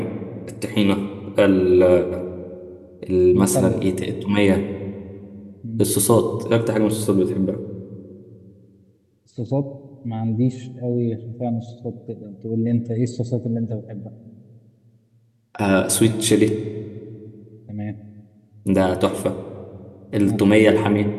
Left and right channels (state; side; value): identical; both; correlation 1.00